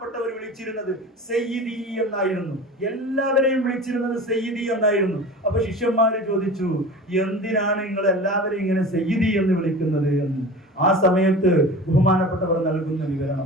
വിളിച്ചിരുന്നത് സയ്യിദി എന്നായിരുന്നു. എല്ലാവരെയും വിളിച്ചിരുന്നത് സയ്യിദി എന്നായിരുന്നു. അപ്പൊ ശിഷ്യന്മാര് ചോദിച്ചു, എന്തിനാണ് നിങ്ങൾ എല്ലാവരെയും ഇങ്ങനെ സയ്യിദി എന്ന് വിളിക്കുന്നത് എന്ന്. ആ സമയത്ത് ബഹുമാനപ്പെട്ടവർ നൽകുന്ന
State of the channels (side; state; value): both; normal; correlation 0.35